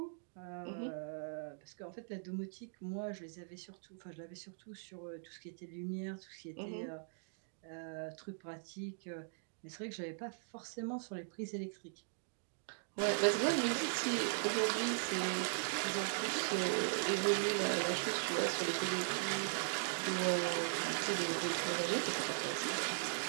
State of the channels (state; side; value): silent; left; digital silence